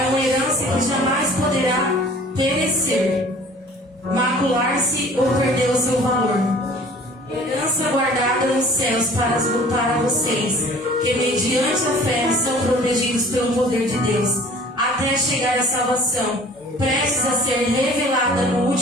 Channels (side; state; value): both; normal; correlation 0.49